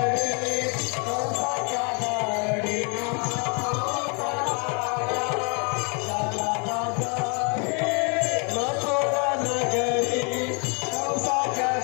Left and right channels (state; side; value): quieter; right; 36.2 dB